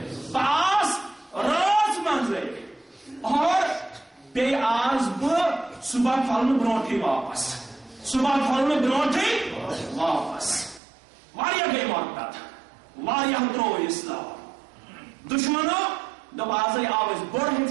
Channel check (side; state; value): left; drops out; at 10.8 s